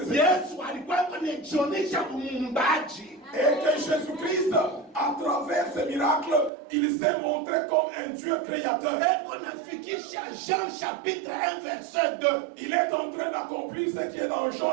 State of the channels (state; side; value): drops out; left; at 6.5 s